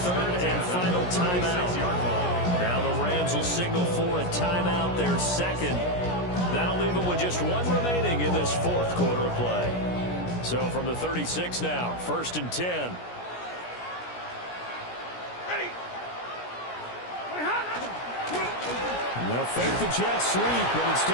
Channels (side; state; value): right; late; 17 ms